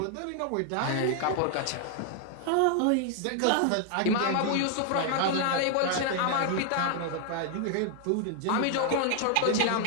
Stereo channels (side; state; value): both; different; correlation 0.00